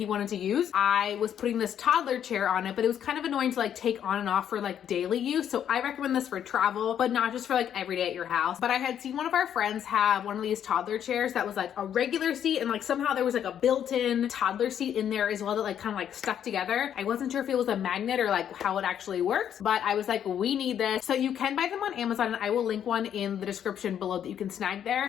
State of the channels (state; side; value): quieter; right; 9.4 dB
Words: wanted to use. I was putting this toddler chair on it, but it was kind of annoying to like take on and off for like daily use. So I recommend this for travel, but not just for like every day at your house. But I had seen one of our friends have one of these toddler chairs that was like a regular seat, and like somehow there was like a built-in toddler seat in there as well that like kind of like stuck together. I wasn't sure if it was a magnet or like how it actually works, but I was like, we need this. So you can buy them on Amazon, and I will link one in the description below that you can snag there.